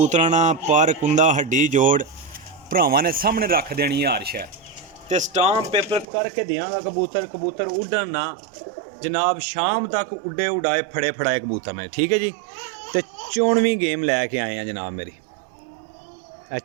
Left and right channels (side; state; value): left; drops out; at 6.1 s